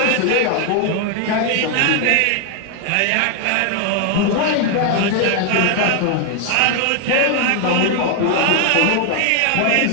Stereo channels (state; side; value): different; both; correlation 0.01